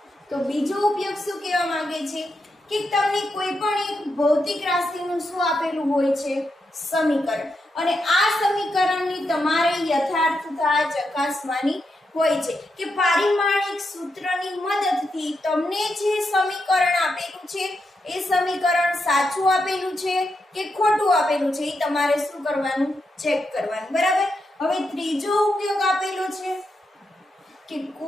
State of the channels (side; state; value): both; normal; correlation 0.84